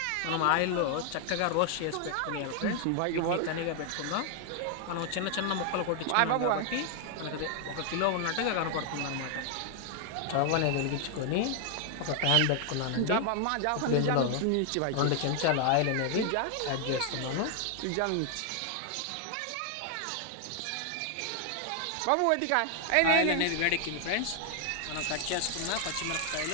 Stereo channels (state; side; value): different; both; correlation 0.00